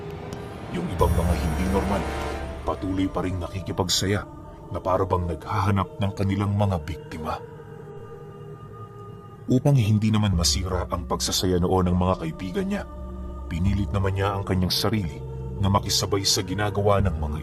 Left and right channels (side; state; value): both; identical; correlation 1.00